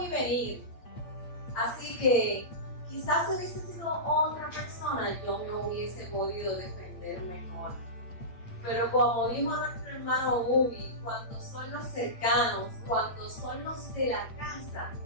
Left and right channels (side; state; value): right; late; 8.6 ms